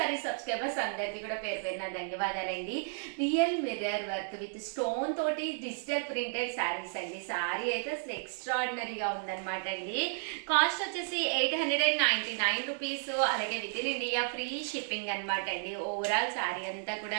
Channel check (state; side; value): silent; left; digital silence